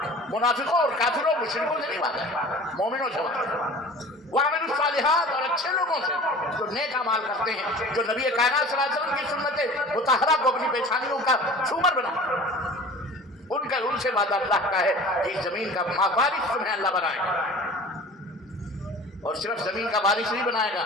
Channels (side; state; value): both; normal; correlation 0.41